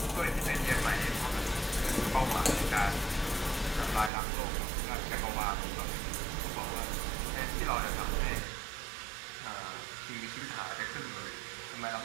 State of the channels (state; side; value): drops out; left; at 4.1 s